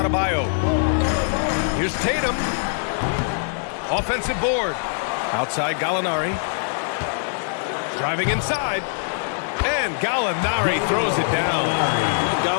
Here's Tatum. Offensive board. Outside Gallinari. Driving inside. And Gallinari throws it down.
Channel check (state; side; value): silent; right; 56 dB below the other